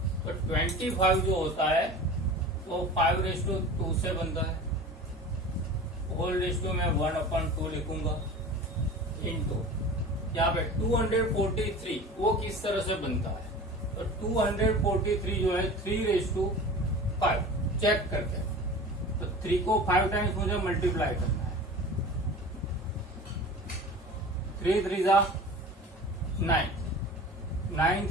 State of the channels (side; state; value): both; normal; correlation 0.37